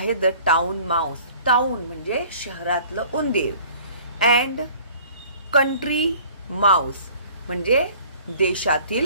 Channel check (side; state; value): both; inverted; correlation -0.50